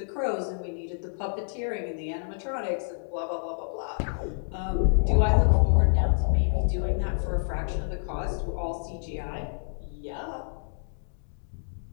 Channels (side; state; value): right; silent; digital silence